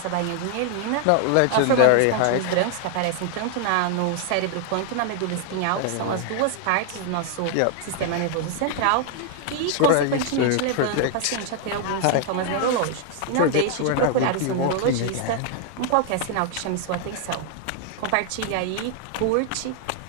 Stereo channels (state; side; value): different; both; correlation 0.00